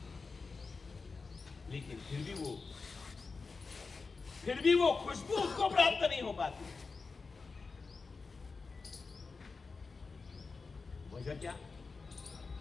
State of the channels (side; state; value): right; quieter; 4.4 dB